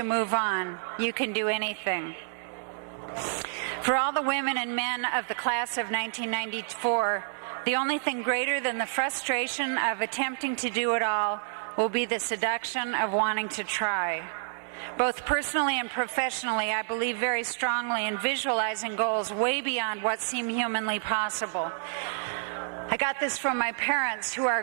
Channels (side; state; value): left; silent; digital silence